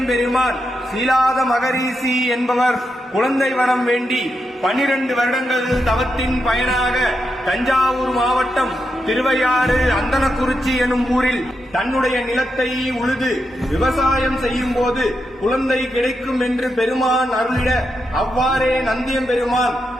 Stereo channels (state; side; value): normal; both; correlation 0.85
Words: சீலாத மகரிஷி என்பவர் குழந்தை வரம் வேண்டி 12 வருடங்கள் தவத்தின் பயனாக தஞ்சாவூர் மாவட்டம் திருவையாறு அந்தனக்குறிச்சி எனும் ஊரில் தன்னுடைய நிலத்தை உழுது விவசாயம் செய்யும் போது குழந்தை கிடைக்கும் என்று பெருமான் அருளிட அவ்வாறே நந்தியம்பெருமான்